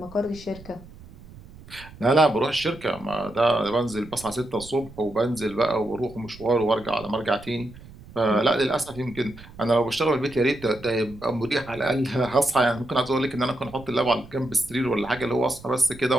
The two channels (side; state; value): right; noise; rumble, 19 dB below the sound